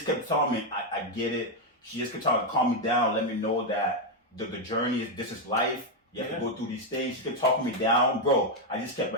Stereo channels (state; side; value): normal; both; correlation 0.03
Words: kept telling me, I get it. She just kept trying to calm me down, let me know that the journey is, this is life. You have to go through these things. She kept talking me down, bro. I just kept